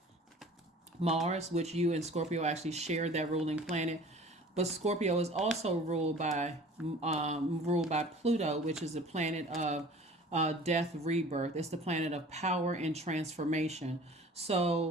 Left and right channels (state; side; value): normal; both; correlation 0.46